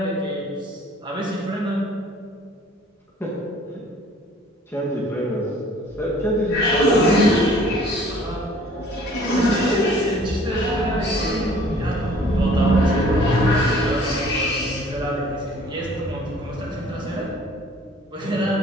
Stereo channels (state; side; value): normal; both; correlation 0.53